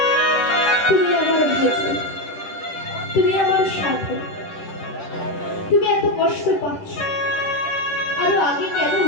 তুমি আমার ভোজন, তুমি আমার সাধন। তুমি এত কষ্ট পাচ্ছ, আরো আগে কেন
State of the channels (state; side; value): late; right; 10 ms